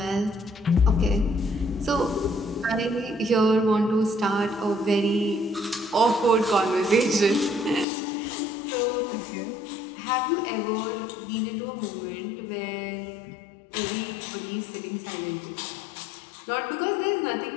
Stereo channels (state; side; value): drops out; right; at 7.9 s